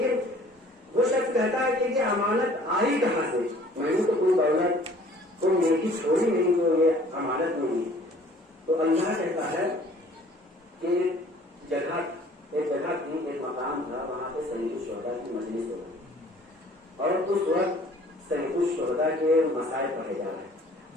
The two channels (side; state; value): both; normal; correlation 0.53